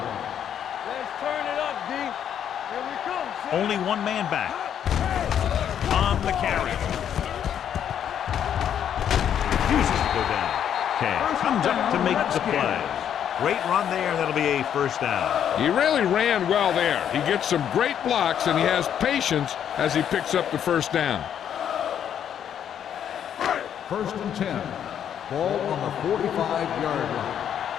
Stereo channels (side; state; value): right; quieter; 9.2 dB